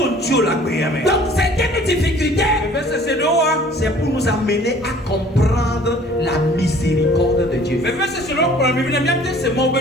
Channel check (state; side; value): normal; both; correlation 0.52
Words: Donc certaines difficultés, c'est pour nous amener à comprendre la miséricorde de Dieu.